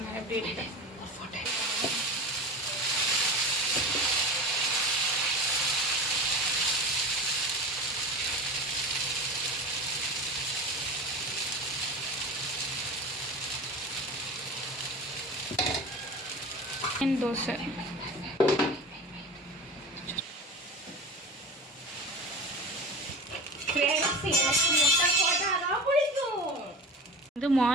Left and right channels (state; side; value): normal; both; correlation 0.31